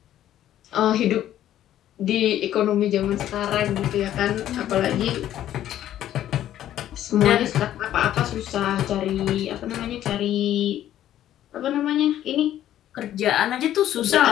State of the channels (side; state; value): right; quieter; 12.1 dB